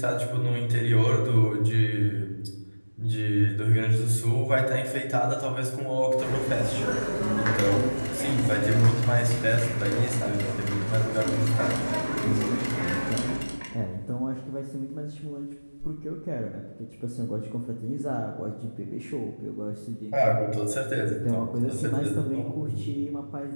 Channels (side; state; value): both; inverted; correlation -1.00